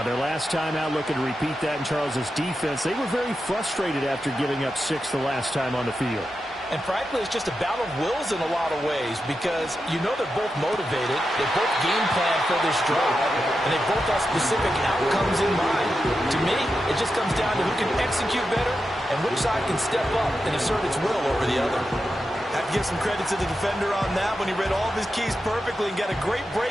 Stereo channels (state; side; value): normal; both; correlation 0.89